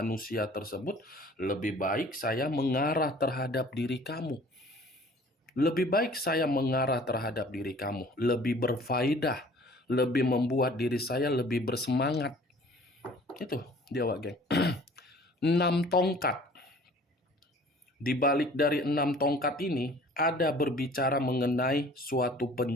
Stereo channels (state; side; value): normal; both; correlation 0.50